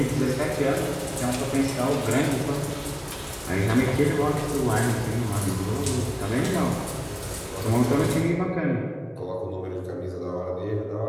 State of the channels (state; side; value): identical; both; correlation 1.00